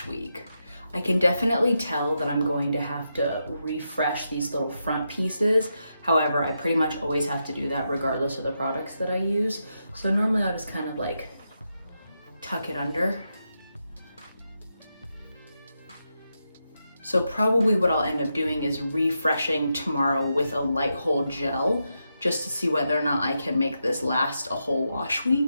week. I can definitely tell that I'm going to have to refresh these little front pieces. However, I pretty much always have to do that regardless of the products that I use. So normally I'll just kind of like tuck it under. So probably what I'll end up doing is refreshing tomorrow with a light hold gel, just to see whether or not I can make this last a whole wash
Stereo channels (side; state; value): both; inverted; correlation -0.85